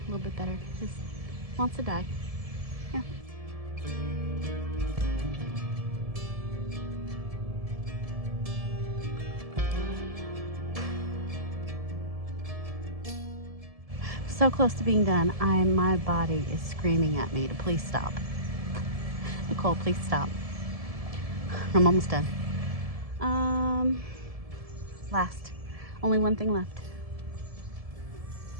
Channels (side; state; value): left; late; 1.7 ms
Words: little bit better. Just wants to die. Yeah. So close to being done. My body is screaming at me to please stop. Nicole, please stop. I'm almost done. Last. Only one thing left.